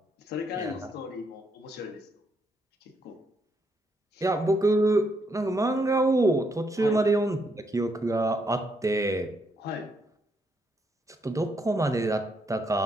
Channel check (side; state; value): both; normal; correlation 0.76